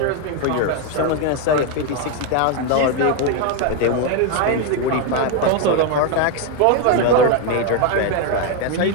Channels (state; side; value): different; both; correlation 0.01